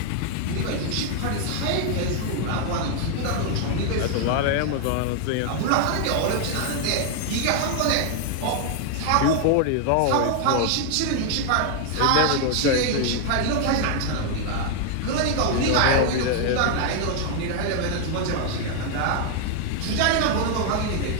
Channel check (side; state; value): both; different; correlation 0.00